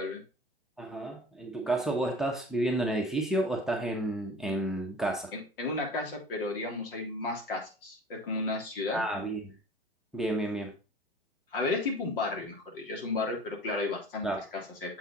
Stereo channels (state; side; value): normal; both; correlation 0.42